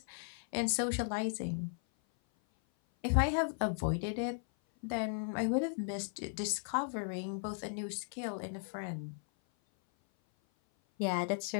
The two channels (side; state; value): right; silent; 53 dB below the other